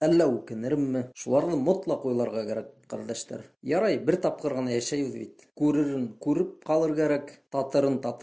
үкенермме? Шуларны мотлаҡ уйларға кәрәк, ҡәрҙәштәр. Ярай, бер тапҡыр ғына йәшәйбеҙ бит. Күререн күреп ҡалыр кәрәк, татырын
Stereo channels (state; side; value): identical; both; correlation 1.00